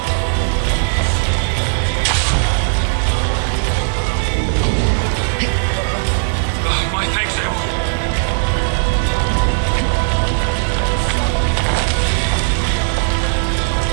My thanks, Eivor.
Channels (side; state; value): left; silent; 64 dB below the other